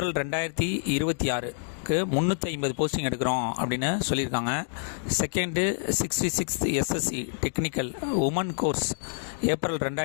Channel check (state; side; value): silent; right; digital silence